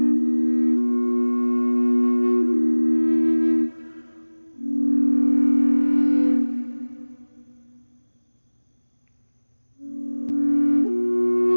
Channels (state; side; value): inverted; both; correlation -1.00